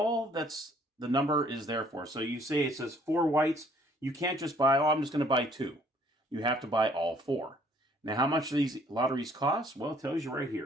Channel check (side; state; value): both; normal; correlation 0.60